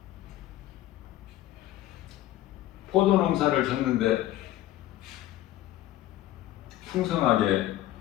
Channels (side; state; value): right; quieter; 14.4 dB